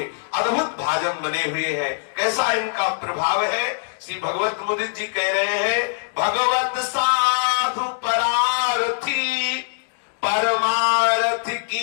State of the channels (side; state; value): right; silent; digital silence